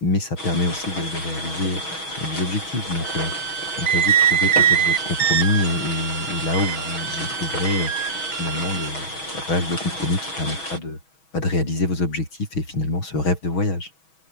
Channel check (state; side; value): late; right; 6.3 ms